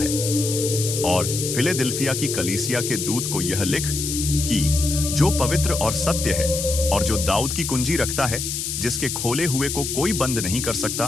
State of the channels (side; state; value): left; noise; hiss, 3 dB below the sound